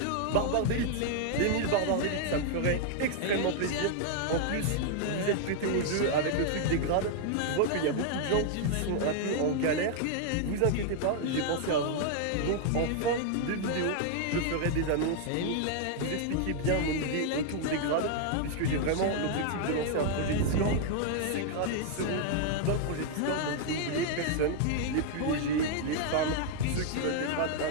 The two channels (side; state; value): both; different; correlation 0.00